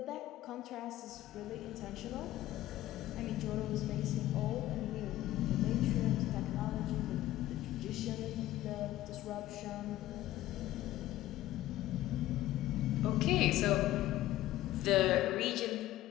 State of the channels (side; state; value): right; quieter; 14.9 dB